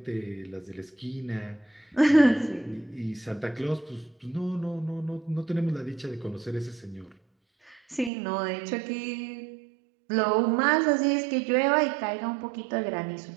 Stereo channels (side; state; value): left; drops out; at 8.1 s